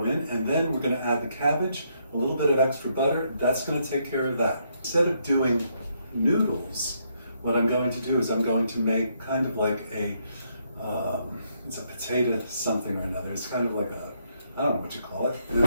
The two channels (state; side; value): inverted; both; correlation -0.75